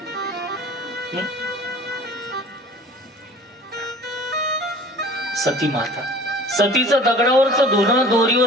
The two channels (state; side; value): normal; both; correlation 0.45